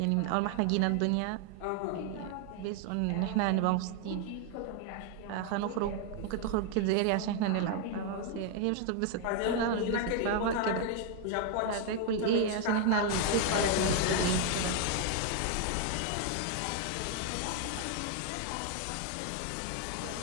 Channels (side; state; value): both; different; correlation 0.00